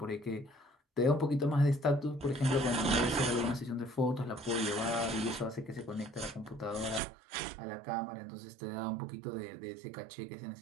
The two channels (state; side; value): drops out; left; at 7.0 s